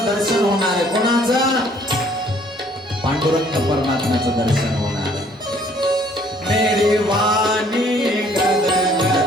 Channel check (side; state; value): both; normal; correlation 0.60